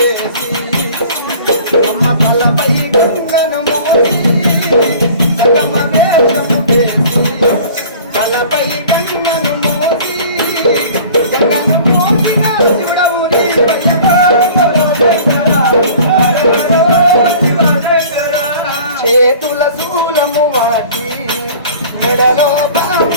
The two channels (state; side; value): inverted; both; correlation -0.46